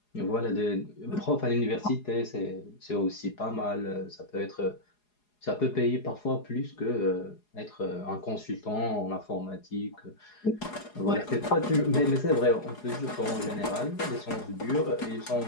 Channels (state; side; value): late; right; 4.8 ms